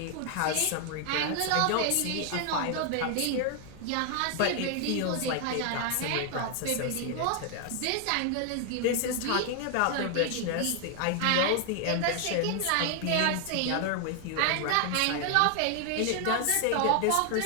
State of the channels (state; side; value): different; both; correlation 0.00